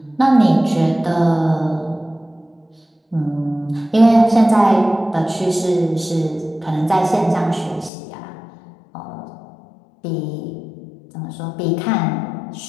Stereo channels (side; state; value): right; drops out; at 7.9 s